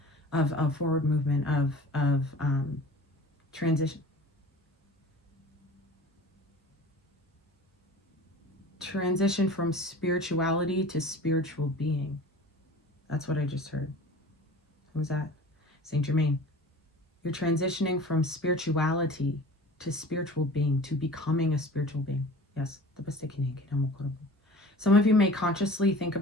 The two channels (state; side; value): normal; both; correlation 0.41